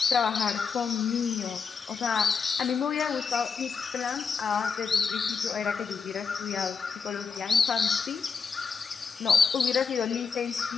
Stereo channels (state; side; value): quieter; right; 5.6 dB